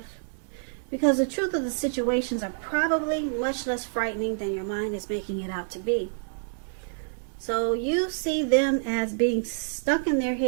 Because the truth of the situations are probably much less frightening than your mind is making it out to be. So you see them as being stuck in their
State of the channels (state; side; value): silent; left; digital silence